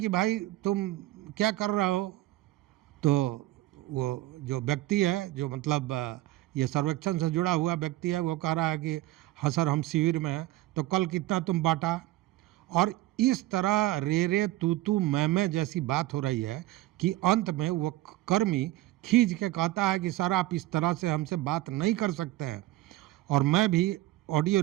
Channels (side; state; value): left; quieter; 16.8 dB